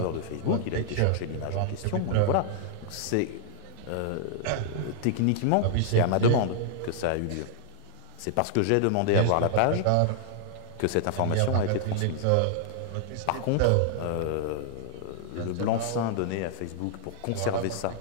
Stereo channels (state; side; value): different; both; correlation -0.01